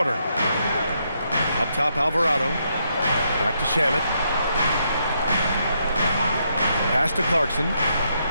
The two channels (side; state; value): both; inverted; correlation -0.77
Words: Up top, Alvarado. Back to Shamet. Pass to Clarkson.